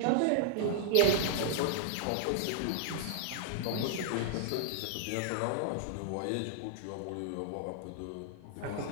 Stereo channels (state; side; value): different; both; correlation -0.01